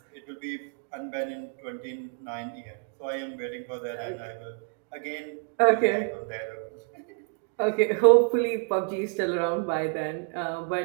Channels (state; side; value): quieter; left; 38.4 dB